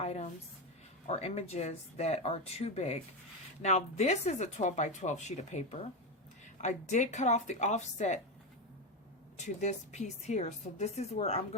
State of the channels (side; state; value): both; normal; correlation 0.13